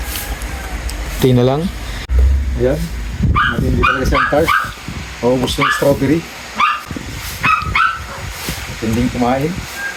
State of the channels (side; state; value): both; identical; correlation 1.00